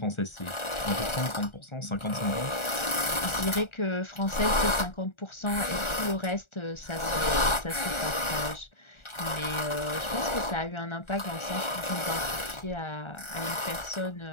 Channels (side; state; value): right; late; 1.4 ms